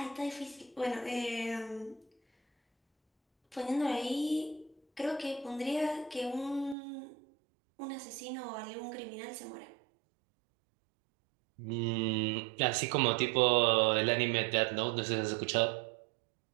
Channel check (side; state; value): left; drops out; at 6.8 s